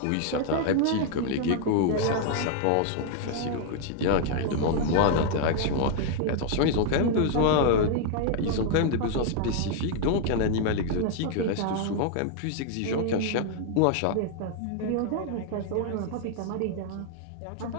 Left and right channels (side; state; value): both; different; correlation 0.00